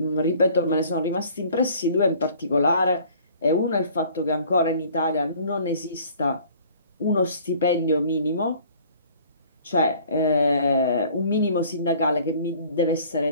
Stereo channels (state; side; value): inverted; both; correlation -0.52